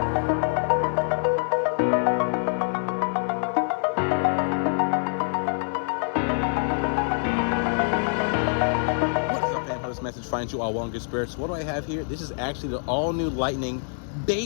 Message finds you all well in good spirits. What do I have here? This is actually the all-new Lightning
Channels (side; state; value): right; silent; digital silence